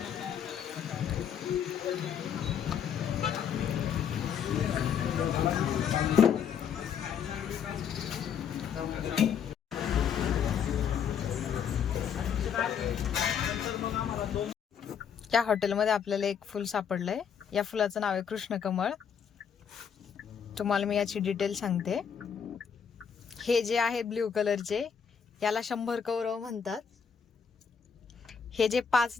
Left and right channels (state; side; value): quieter; right; 7.5 dB